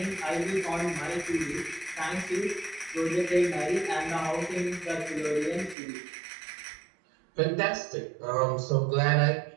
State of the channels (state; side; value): drops out; left; at 5.8 s